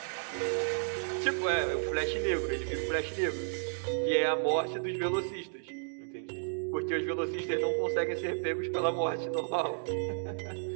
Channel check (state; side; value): silent; left; digital silence